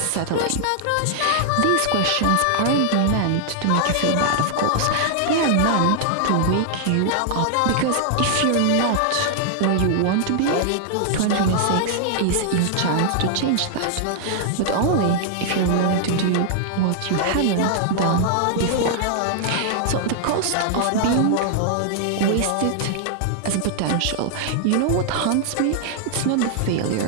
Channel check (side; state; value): both; different; correlation -0.01